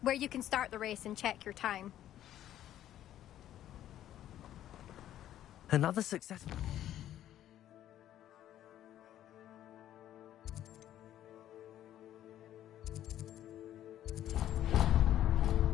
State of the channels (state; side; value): quieter; right; 12.0 dB